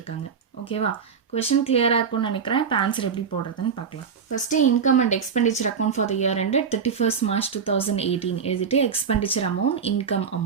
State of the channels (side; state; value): left; quieter; 6.4 dB